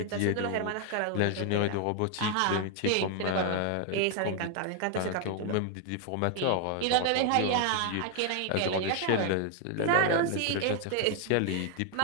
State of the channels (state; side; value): different; both; correlation 0.00